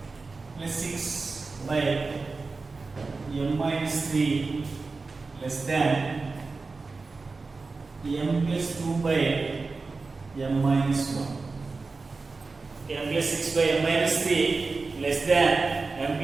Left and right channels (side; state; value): left; quieter; 4.0 dB